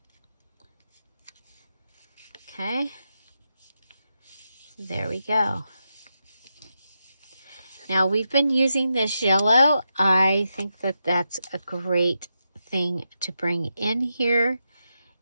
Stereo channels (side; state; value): both; inverted; correlation -0.86